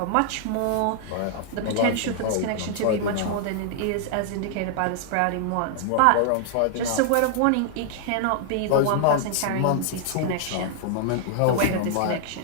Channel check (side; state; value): both; different; correlation -0.01